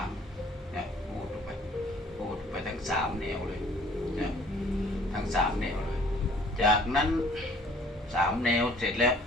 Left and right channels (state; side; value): normal; both; correlation 0.56